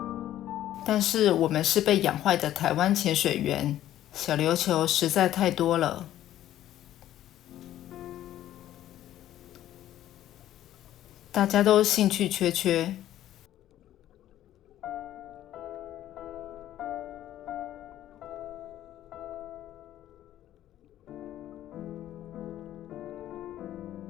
但是我们是被养坏的台湾潜水员，小琉球实在太多了。大家都兴趣缺缺。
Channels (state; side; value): quieter; right; 12.7 dB